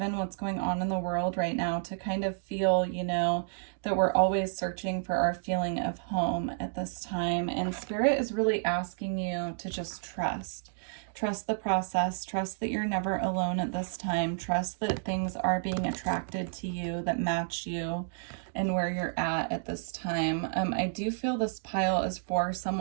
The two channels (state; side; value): silent; left; digital silence